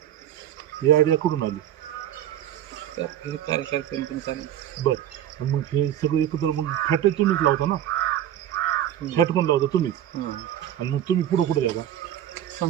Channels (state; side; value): quieter; left; 11.4 dB